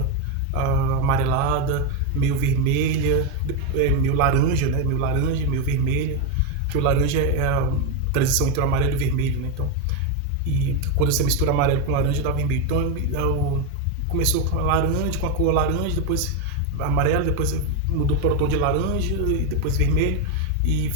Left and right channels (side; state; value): both; normal; correlation 0.03